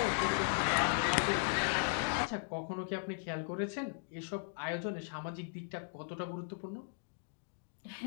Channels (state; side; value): silent; right; digital silence